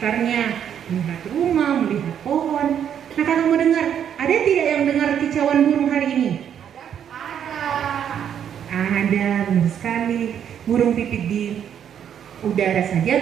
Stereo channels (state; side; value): quieter; left; 9.0 dB